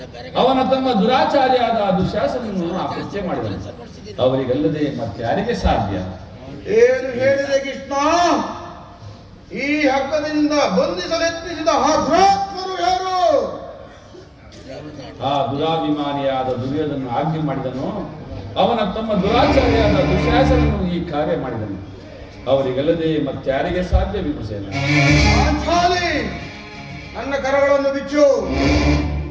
ಅವನ ತಮ್ಮ ದುರಾಚಾರಿಯಾದ ದುಶ್ಯಾಸನನ್ನು ಅಪರಿಚಯ ಮಾಡಿದನು. ಅವರಿಗಲ್ಲದೆ ಮತ್ತಾರಿಗೆ ಸಾಧ್ಯ? ಏನು ಹೇಳಿದೆ ಕೃಷ್ಣ? ಈ ಹಗ್ಗದಿಂದ ಬಂಧಿಸಲೆತ್ನಿಸಿದ ಆ ದುರಾತ್ಮರು ಯಾರು? ಆ ದುರಾಭಿಮಾನಿಯಾದ ದುರ್ಯೋಧನ ಆಜ್ಞೆ ಮಾಡಿದನು. ಅವನ ತಮ್ಮ ದುರಾಚಾರಿಯಾದ ದುಶ್ಯಾಸನನು ಈ ಕಾರ್ಯ ಮಾಡಿದನು. ಅವರಿಗಲ್ಲದೆ ಮತ್ತಾರಿಗೆ ಸಾಧ್ಯ? ಭೀಮಸೇನ, ನನ್ನ ಕರಗಳನ್ನು ಬಿಚ್ಚು.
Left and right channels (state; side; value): identical; both; correlation 1.00